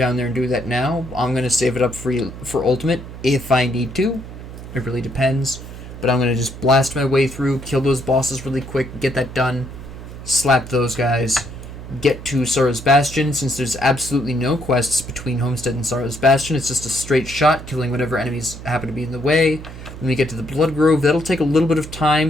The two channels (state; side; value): noise; right; hum, 13 dB below the sound